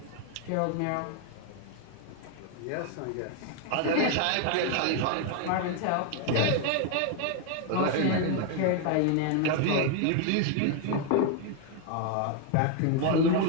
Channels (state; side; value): different; both; correlation 0.00